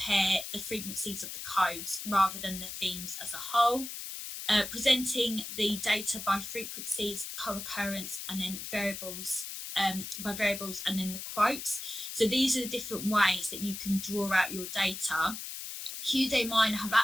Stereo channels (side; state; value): left; noise; hiss, 8 dB below the sound